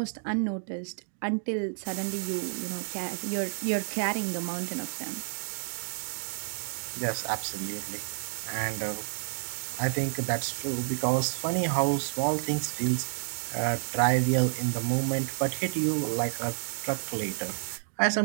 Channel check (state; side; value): silent; left; digital silence